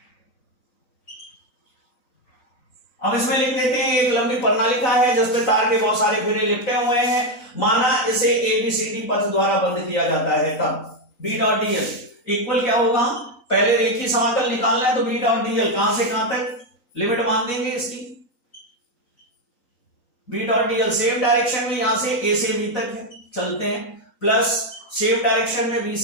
अब इसमें लिख देते हैं एक लंबी प्रणालिका है जिसपे तार के बहुत सारे फेरे लिपटे हुए हैं, माना इसे ABCD पथ द्वारा बंद किया जाता है, तब B डॉट dl इक्वल क्या होगा, पहले एक ही समाकल निकालना है, तो B डॉट dl कहां से कहां तक लिमिट मान देंगे इसकी, B dot dl same direction में यहां से A से B तक है, चलते हैं, प्लस सेम डायरेक्शन में B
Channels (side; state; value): right; late; 3.9 ms